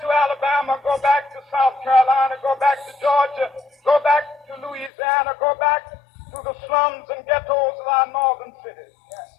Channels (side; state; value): right; drops out; at 4.9 s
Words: to Alabama. Go back to South Carolina. Go back to Georgia. Go back to Louisiana. Go back to the slums and ghettos of our northern cities.